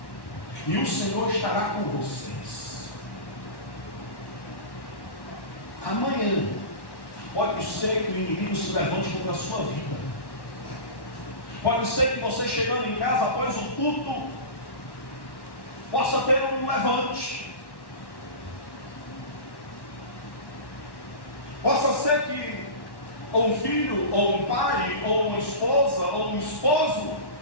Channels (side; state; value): right; late; 1.1 ms